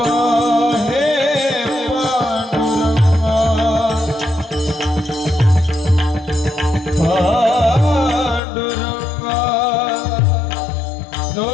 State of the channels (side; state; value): right; drops out; at 8.4 s